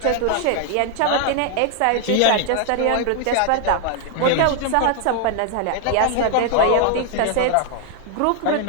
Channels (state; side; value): different; both; correlation 0.00